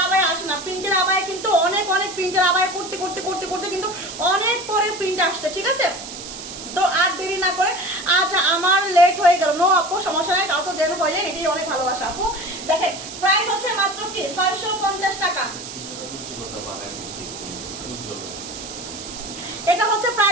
আবায়া আসে না, প্রিন্টের আবায়া কিন্তু অনেক প্রিন্টের আবায়া করতে কিন্তু অনেক পরে প্রিন্ট আসছে, ঠিক আছে। তো আর দেরি না করে, আজ আমার লেট হয়ে গেল, নো আপু সমস্যা নাই, কাউকে জেন হয়ে যায়, এটাই অনেক ভালোবাসা আপু। দেখেন প্রাইস হচ্ছে মাত্র কি 650 টাকা, এটা হচ্ছে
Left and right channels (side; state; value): right; noise; hiss, 11 dB below the sound